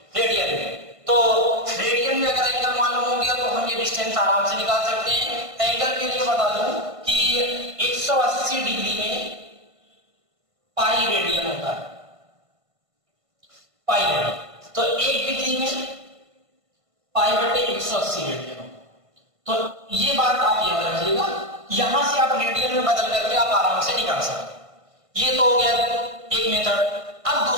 तो रेडियन में अगर एंगल मालूम हो गया तो हम ये डिस्टेंस आराम से निकाल सकते हैं। एंगल के लिए बता दूं कि 180 डिग्री में पाई रेडियन होता है, पाई रेडियन। तो 1 डिग्री में पाई बटे 180 रेडियन होता है। तो ये बात आप याद रखिएगा, यहां से आप रेडियन में बदल करके आप आराम से निकाल सकते हैं। ये तो हो गया एक मेथड। अब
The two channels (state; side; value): late; left; 1.5 ms